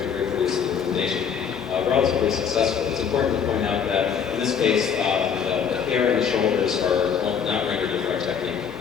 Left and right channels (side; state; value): right; quieter; 7.3 dB